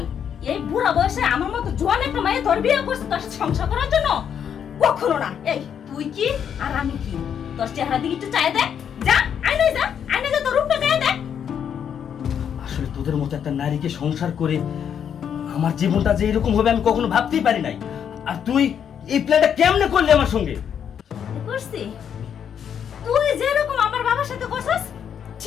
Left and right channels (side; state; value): right; quieter; 8.3 dB